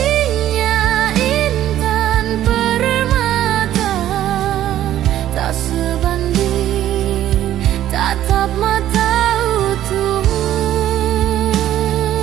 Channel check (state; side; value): quieter; left; 12.4 dB